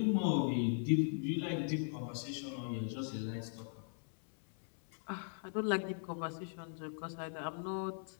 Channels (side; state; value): right; silent; 52 dB below the other